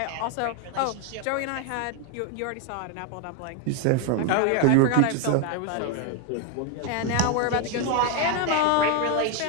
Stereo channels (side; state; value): both; different; correlation 0.01